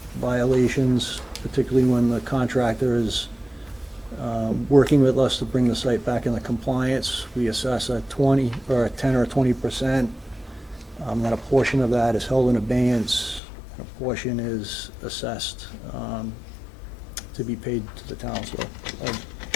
violations, particularly when the contractor is working with us to bring the site back into compliance, we assess a 10 or 20%. Then a portion of that is held in abeyance, and a portion is assessed to be paid to the town. So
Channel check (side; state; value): right; drops out; at 13.4 s